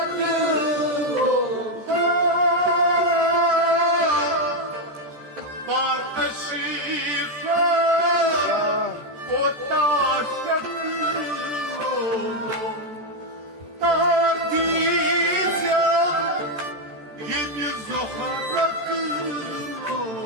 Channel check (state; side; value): late; left; 13 ms